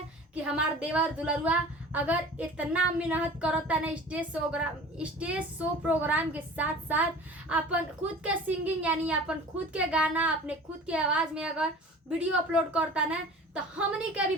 कि हमार देवर दुलरुआ अगर इतना मेहनत करता ना स्टेज शो प्रोग्राम के साथ साथ अपन खुद के सिंगिंग यानी अपन खुद के गाना अपने खुद के आवाज में अगर वीडियो अपलोड करता ना, तो हमनी के भी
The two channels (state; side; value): normal; both; correlation 0.41